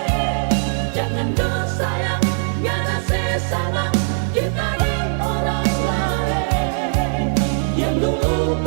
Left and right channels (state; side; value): silent; left; digital silence